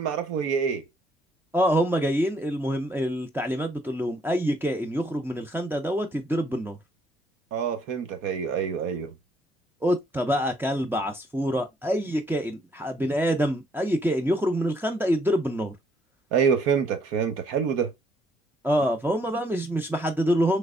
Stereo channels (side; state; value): both; normal; correlation 0.68